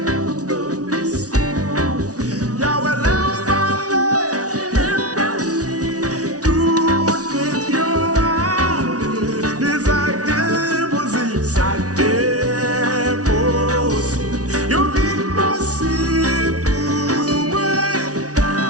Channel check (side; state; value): left; late; 0.68 ms